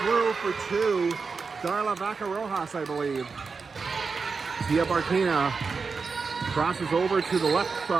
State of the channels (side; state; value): left; quieter; 4.9 dB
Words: through for two. Darla Vaca-Rojas, I believe. Zia Barquina crosses over to the left